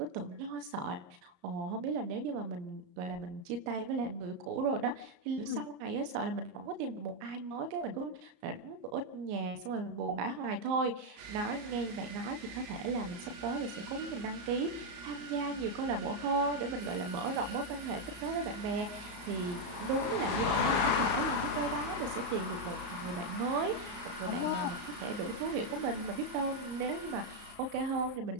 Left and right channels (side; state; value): left; late; 33 ms